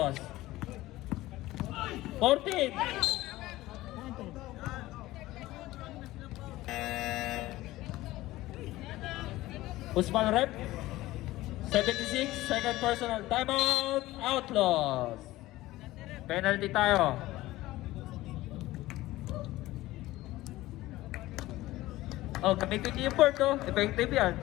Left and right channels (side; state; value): right; quieter; 17.2 dB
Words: 14. Usman rep. 76, second personal. Timeout. Outlaws. Penalty tayo. Oh, gamitin niyo yung board, oh. Effective yan.